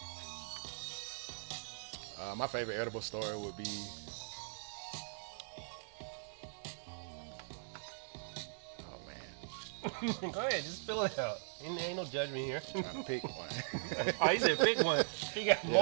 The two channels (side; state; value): left; silent; digital silence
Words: Wow. My favorite edible story would be. Oh man. Go ahead, just spill it out. Ain't no judgment here. I'm trying to pick one. Oh, he said pick one. He got